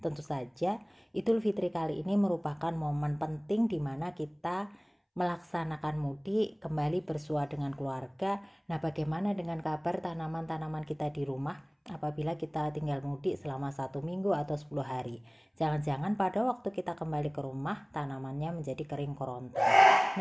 Tentu saja Idul Fitri kali ini merupakan momen penting di mana kita melaksanakan mudik, kembali bersua dengan keluarga. Nah, bagaimana dengan kabar tanaman-tanaman kita di rumah apabila kita tinggal mudik selama 1 minggu atau 10 hari? Jangan-jangan pada waktu kita kembali ke rumah tanamannya menjadi kering kerontang.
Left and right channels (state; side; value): identical; both; correlation 1.00